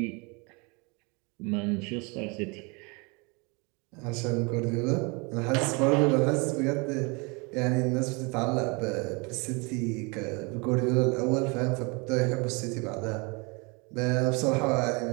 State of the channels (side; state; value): left; quieter; 29.9 dB